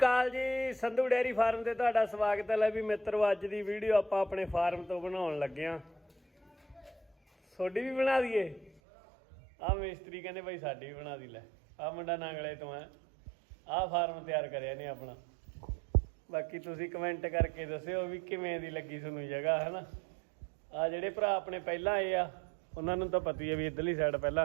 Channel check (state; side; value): drops out; left; at 8.8 s